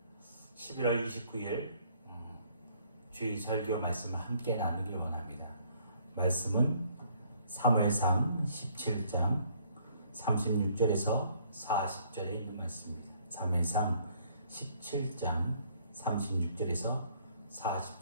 11월 29일 주일 설교 말씀을 함께 나누길 원합니다. 말씀은 사무엘상 17장 36절에서 40절에 있는 말씀입니다. 사무엘상 17장 36절에서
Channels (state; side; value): inverted; both; correlation -0.63